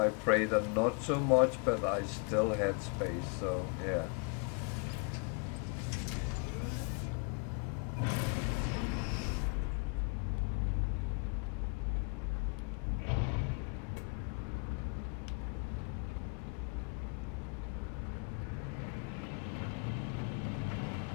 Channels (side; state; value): right; quieter; 35.6 dB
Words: Praetor not so much, but I still had space, so yeah.